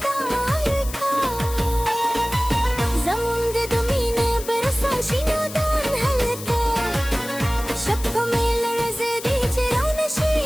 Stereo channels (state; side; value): noise; left; hiss, 12 dB below the sound